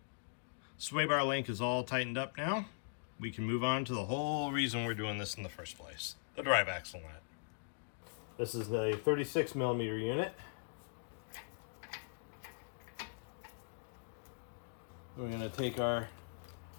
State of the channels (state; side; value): silent; right; digital silence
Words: Sway bar link is all tightened up now. We can move on to the whole reason we're doing this in the first place, the drive axle nut. This is a 36mm unit. We're going to take our